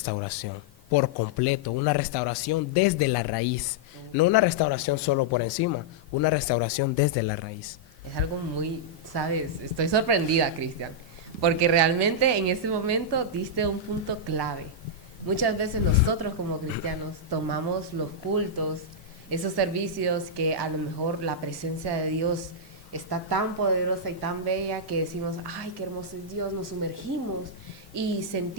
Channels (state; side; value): normal; both; correlation -0.07